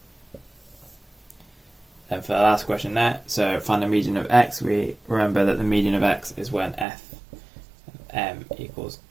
And for the last question there, so find the median of x, we remember that the median of x is when f of m equals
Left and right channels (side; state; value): left; drops out; at 6.9 s